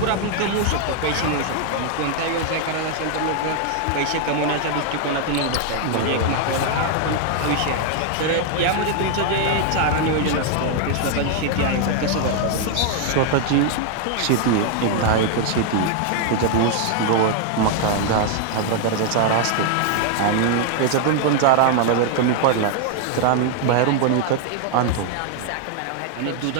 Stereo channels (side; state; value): both; different; correlation 0.00